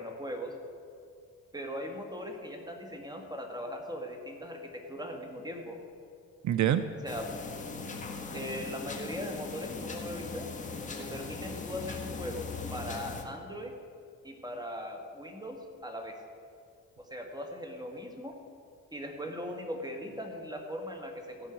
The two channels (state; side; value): normal; both; correlation 0.31